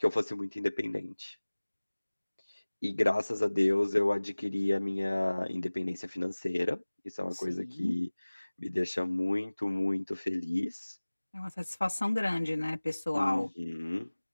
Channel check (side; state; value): both; inverted; correlation -1.00